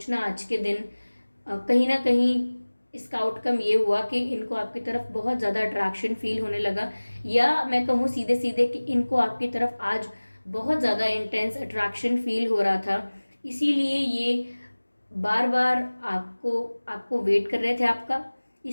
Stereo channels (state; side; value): inverted; both; correlation -1.00